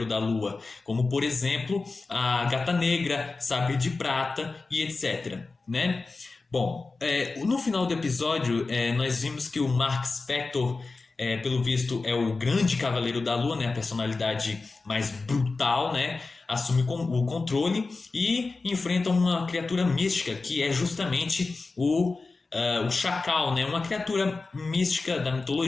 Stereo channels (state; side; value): quieter; right; 3.8 dB